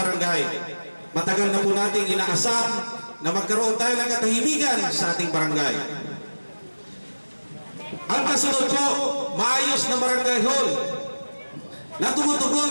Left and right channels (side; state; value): both; inverted; correlation -1.00